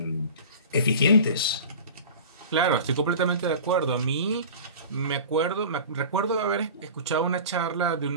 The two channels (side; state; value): both; inverted; correlation -0.36